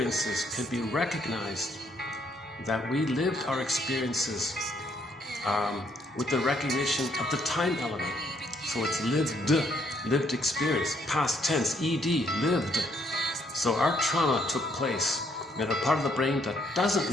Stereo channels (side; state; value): both; normal; correlation 0.70